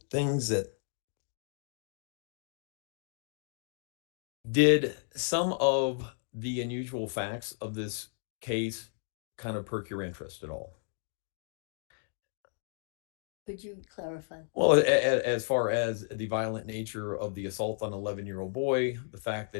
things that did some of the unusual facts of this case kind of perk your interest at all? Could you clarify? Well, as far as the violent nature of the assault on an 11-year-old boy, the fact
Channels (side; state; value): right; silent; digital silence